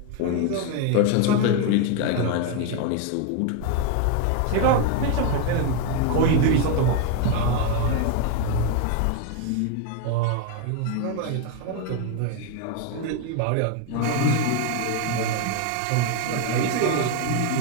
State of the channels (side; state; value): both; different; correlation 0.01